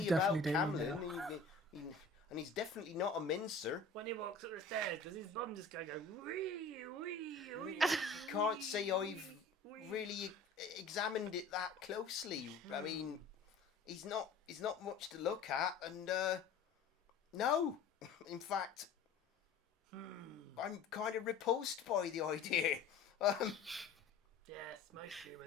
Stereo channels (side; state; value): right; quieter; 4.1 dB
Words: about definitely dainty Camlin, and he's definitely not a mincer. When he walks up the stairs, does his bum just go wee, wee, wee? You can't say I've really examined it that closely. I mean, he's not much to look at, and no, in fact, I'm kind of repulsed by the idea. Yes, most